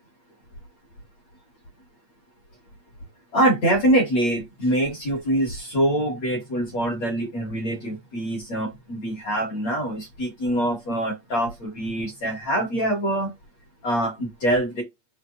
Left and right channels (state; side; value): late; right; 8.5 ms